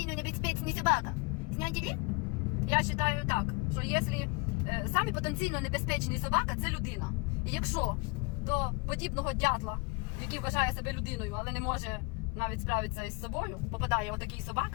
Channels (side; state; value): right; quieter; 28.7 dB